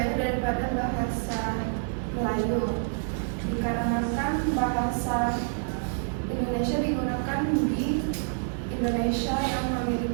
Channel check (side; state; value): left; silent; 60 dB below the other